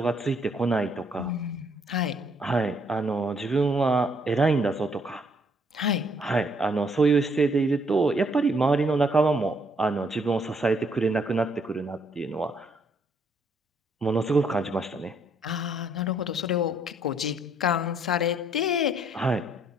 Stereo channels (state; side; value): normal; both; correlation 0.69